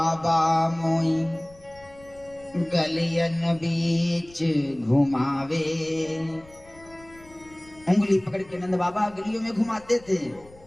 मोई, गलियन बीच घुमावे। उंगली पकड़ के नंद बाबा गलियों में घुमाते थे।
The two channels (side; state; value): left; noise; rumble, 25 dB below the sound